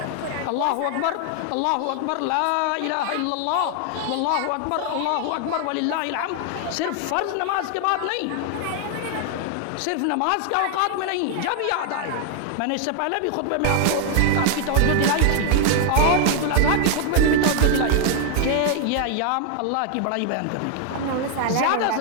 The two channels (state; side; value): different; both; correlation 0.00